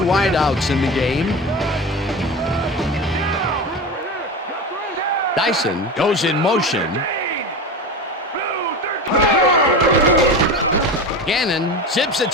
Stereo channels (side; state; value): both; normal; correlation 0.26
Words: in the game. Dyson goes in motion. Gannon zips it